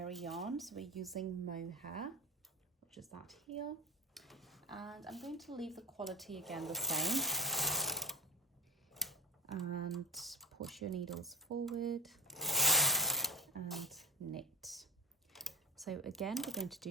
yarn. So we're using mohair, which is that here. And I'm going to leave the quality again the same. And push your needles forward and knit. So again, we're going to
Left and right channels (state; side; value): normal; both; correlation 0.31